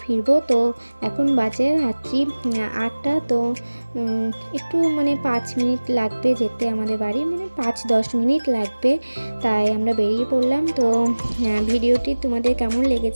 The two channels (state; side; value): inverted; both; correlation -1.00